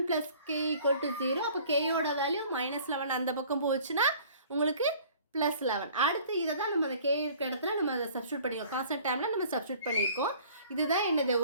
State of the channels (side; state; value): both; inverted; correlation -0.51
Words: ப்ளஸ் கே ஈக்குவல் டு 0. அப்போ கேயோட வேல்யூ -11 அந்த பக்கம் போச்சுன்னா உங்களுக்கு +11. அடுத்து இதை தான் நம்ம அந்த கே இருக்க இடத்துல நம்ம அதை சப்ஸ்டியூட் பண்ணிக்கோம். கான்ஸ்டன்ட் டைமில் நம்ம சப்ஸ்டியூட் பண்ணியிருக்கோம். இதுதான் என்னது?